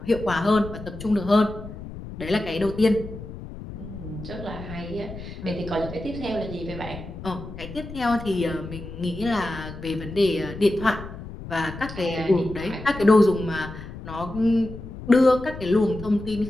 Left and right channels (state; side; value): noise; left; rumble, 12 dB below the sound